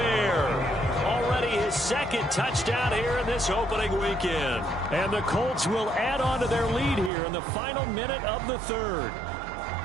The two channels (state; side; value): drops out; left; at 7.1 s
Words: Already his 2nd touchdown here in this opening weekend. And the Colts will add on to their lead here in the final minute of the 3rd.